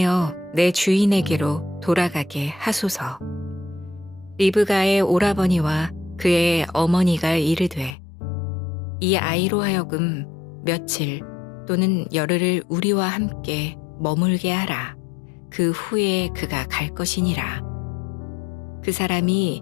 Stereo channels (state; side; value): drops out; right; at 8.0 s